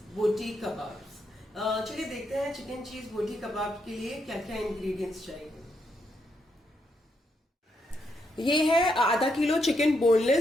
बोटी कबाब्स। चलिए देखते हैं चिकन चीज बोटी कबाब के लिए क्या क्या इंग्रेडिएंट्स चाहिए। ये है आधा किलो चिकन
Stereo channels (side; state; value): both; normal; correlation 0.79